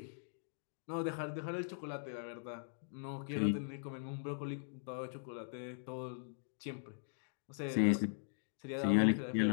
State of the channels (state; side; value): silent; right; digital silence